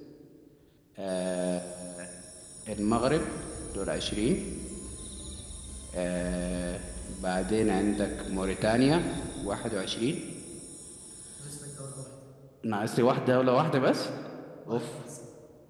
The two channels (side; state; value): both; identical; correlation 1.00